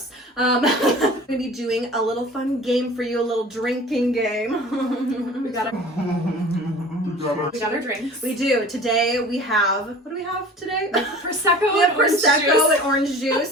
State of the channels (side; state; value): both; normal; correlation 0.42